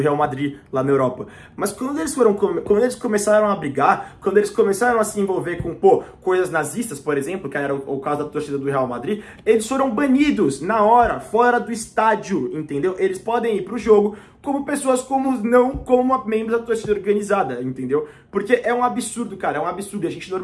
Madrid, lá na Europa. Mas quando eles começaram a brigar, quando eles começaram a se envolver com, coisas nazistas, por exemplo, que era o caso da torcida do Real Madrid, eles foram banidos na hora, fora do estádio, entendeu? Eles podem ir pro jogo como pessoas comuns, não como membros da torcida organizada, entendeu? Porque é um absurdo, cara, é um absurdo. A gente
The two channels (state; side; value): identical; both; correlation 1.00